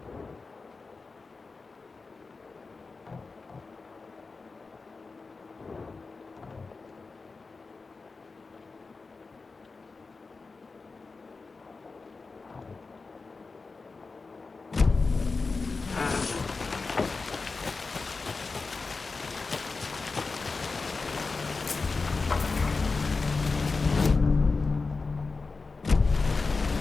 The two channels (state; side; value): quieter; right; 4.1 dB